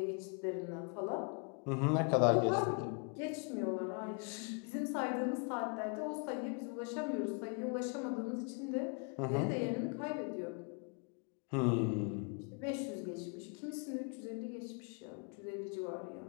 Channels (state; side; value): quieter; right; 35.9 dB